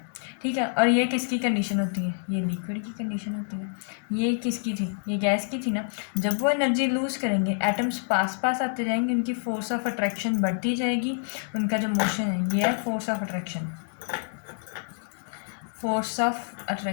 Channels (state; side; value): silent; right; digital silence